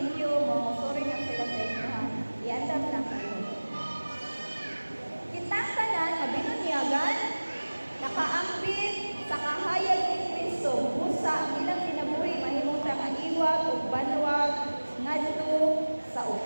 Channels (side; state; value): both; inverted; correlation -1.00